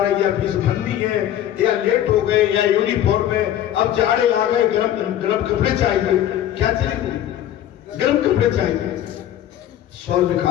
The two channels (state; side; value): quieter; right; 11.5 dB